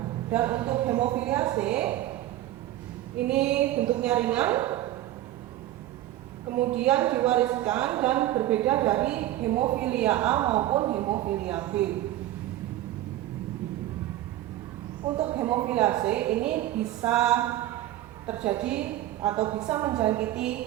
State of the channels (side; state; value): left; quieter; 14.4 dB